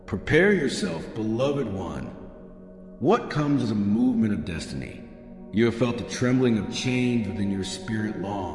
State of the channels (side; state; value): both; identical; correlation 1.00